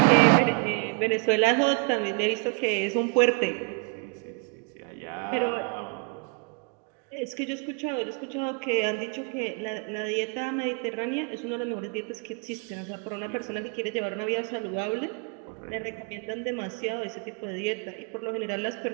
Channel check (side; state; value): left; quieter; 36.7 dB